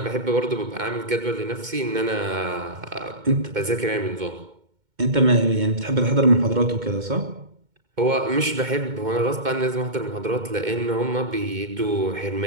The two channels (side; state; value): left; late; 2.2 ms